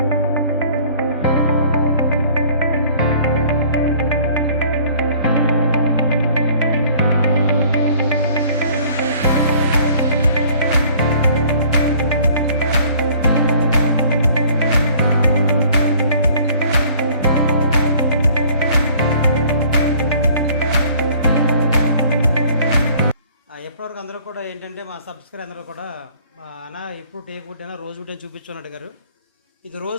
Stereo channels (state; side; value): inverted; both; correlation -0.54